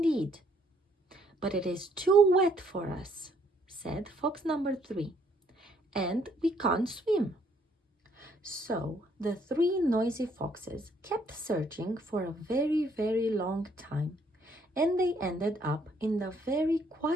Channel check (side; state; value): both; normal; correlation 0.67